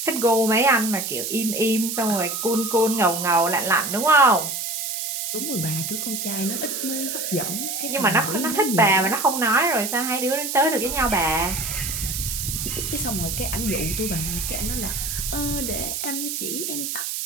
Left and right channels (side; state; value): right; noise; hiss, 3 dB below the sound